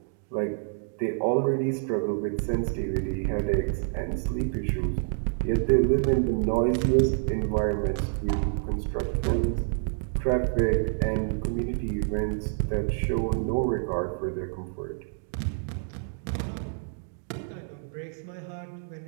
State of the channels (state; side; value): silent; left; digital silence